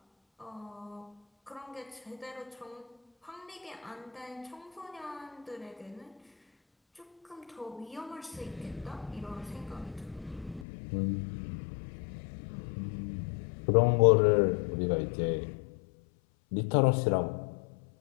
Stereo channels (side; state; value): right; drops out; at 10.7 s